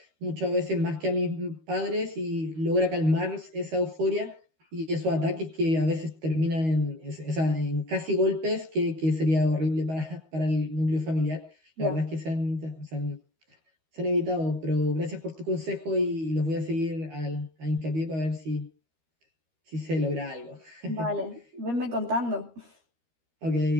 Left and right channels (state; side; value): late; left; 13 ms